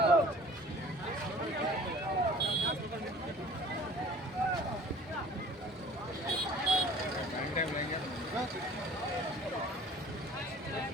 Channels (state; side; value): normal; both; correlation 0.48